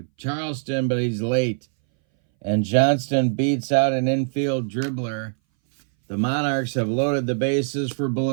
Charleston, but he's late. And Johnston beats out an infield dribbler. The Monarchs have loaded the bases for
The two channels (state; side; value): silent; left; 61 dB below the other